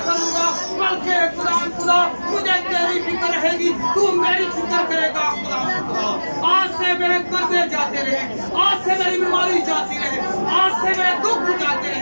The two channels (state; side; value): inverted; both; correlation -1.00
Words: करूंगा बल्कि खुदावंद खुदा मुझे तेरी फिक्र रहेगी तू मेरी फिक्र करेगा खुदावंद खुदा आज से मेरे कर्जे जाते रहे आज से मेरी बीमारी जाती रहे आज से मेरे दुख जाते